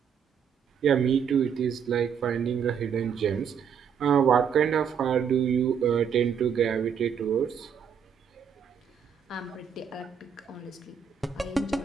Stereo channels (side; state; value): left; quieter; 7.4 dB